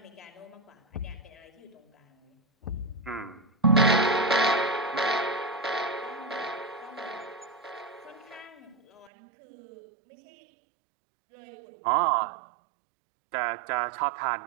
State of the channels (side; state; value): left; drops out; at 9.1 s